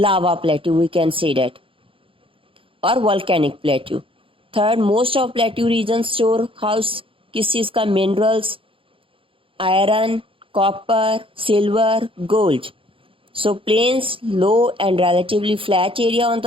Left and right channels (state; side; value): late; left; 0.26 ms